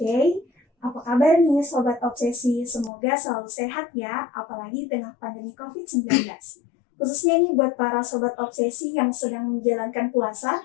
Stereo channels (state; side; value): drops out; right; at 2.9 s